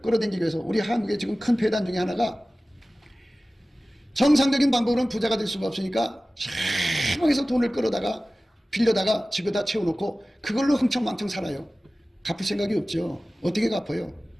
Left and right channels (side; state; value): both; normal; correlation 0.97